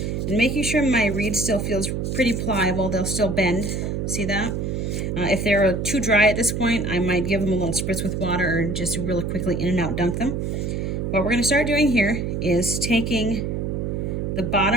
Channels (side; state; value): right; noise; hum, 2 dB below the sound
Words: And making sure my reed still feels pretty pliable, they'll still bend. See that? If they're too dry at this point, I might give them a little spritz with water or just really quickly in and out dunk them. What we're going to start doing here is taking the